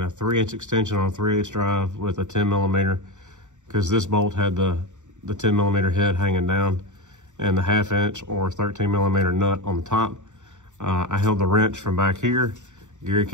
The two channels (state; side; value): late; left; 0.85 ms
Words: a 3-inch extension on a 3/8 drive with a 10mm, because this bolt had the 10mm head hanging down and the 1/2-inch or 13mm nut on the top. I held the wrench from back here. Gary